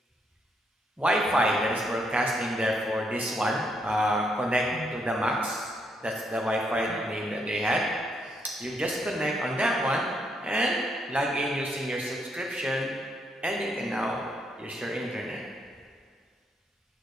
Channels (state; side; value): normal; both; correlation 0.75